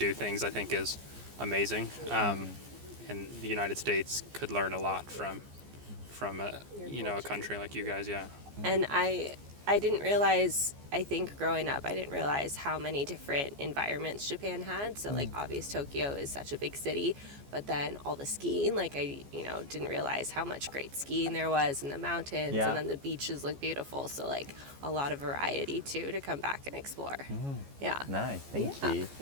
things, I think, is amazing. And the United States could learn a lot from a country like you guys. Yeah. And I didn't realize, I think growing up, I didn't realize how many different environments Japan had. So like obvious Tokyo is such a big city, but then all the skiing, like I didn't realize how much great skiing there was in the mountains, Yeah. and then the beaches look beautiful. So like a lot of variety too to come back and explore. Yeah. Nice, thank Yeah.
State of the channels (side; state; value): left; late; 14 ms